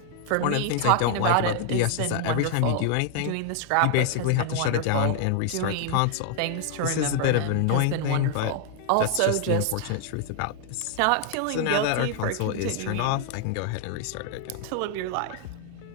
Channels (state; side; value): different; both; correlation 0.00